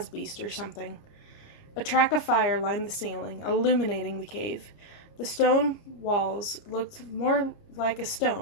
beast or something. A track of fire lined the ceiling, illuminating the cave. The stone walls looked more like a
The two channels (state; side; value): late; right; 29 ms